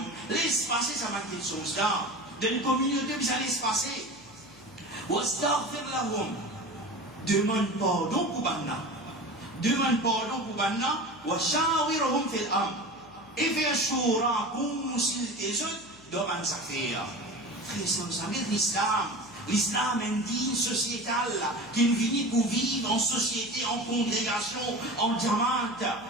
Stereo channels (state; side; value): noise; left; hum, 26 dB below the sound